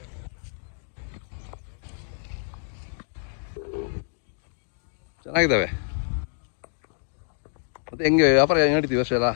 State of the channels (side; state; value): right; silent; 59 dB below the other